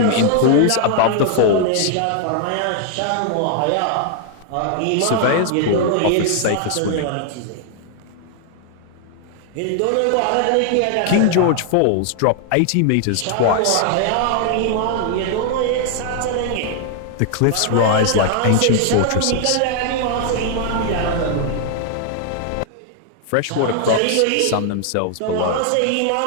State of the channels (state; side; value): different; both; correlation 0.00